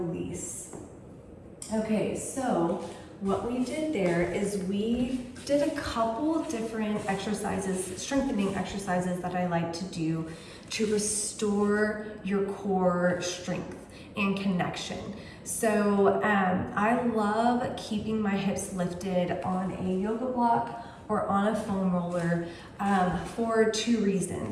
Okay, so what we did there is we did a couple different exercises, strengthening exercises that I like to do to restore your core strength and connection. So I love keeping my hips lifted on a yoga block or on a foam roller for 2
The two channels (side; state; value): both; identical; correlation 1.00